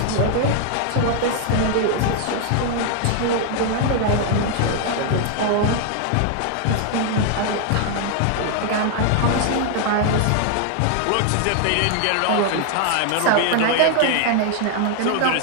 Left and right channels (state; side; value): different; both; correlation 0.00